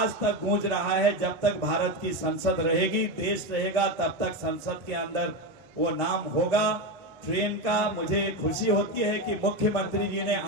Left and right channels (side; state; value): both; normal; correlation 0.14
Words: तक गूंज रहा है। जब तक भारत की संसद रहेगी, देश रहेगा, तब तक संसद के अंदर वो नाम होगा ट्रेन का। मुझे खुशी होती है कि मुख्यमंत्री जी ने